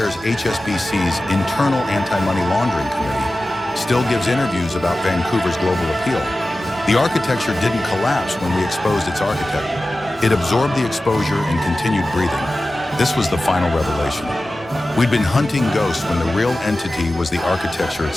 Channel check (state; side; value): normal; both; correlation 0.95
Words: HSBC's internal anti-money laundering committee, still gives interviews about Vancouver's global appeal. The architecture didn't collapse when we exposed its architect. It absorbed the exposure and continued breathing. This was the final revelation. We'd been hunting ghosts when the real entity was the architecture